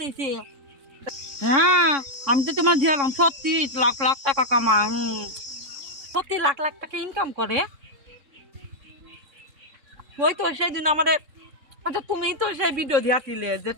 হ্যাঁ আমি তো তোমার দিলাম সত্যি লাখ লাখ টাকা কামা, সত্যি লাখ লাখ টাকা ইনকাম করে। ওই তো সেদিন আমাদের, আচ্ছা তুমি তো সেই ভিডিও দিয়াছিলে যে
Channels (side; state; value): left; late; 3.6 ms